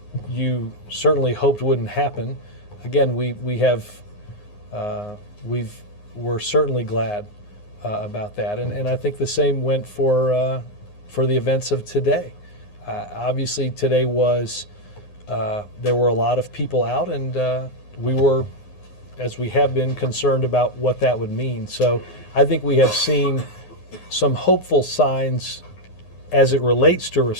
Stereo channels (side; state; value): right; late; 9.6 ms